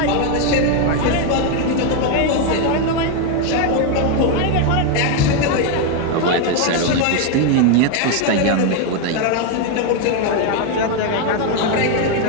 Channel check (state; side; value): different; both; correlation 0.01